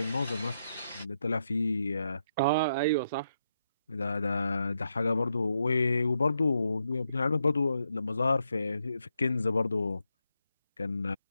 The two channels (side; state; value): both; inverted; correlation -0.81